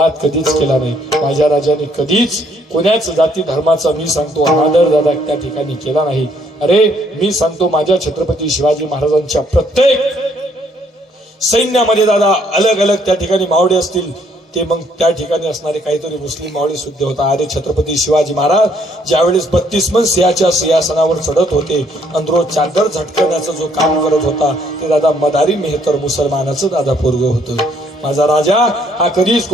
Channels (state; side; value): normal; both; correlation 0.67